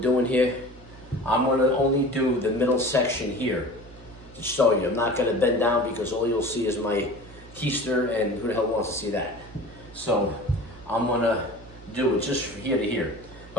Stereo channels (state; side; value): normal; both; correlation 0.39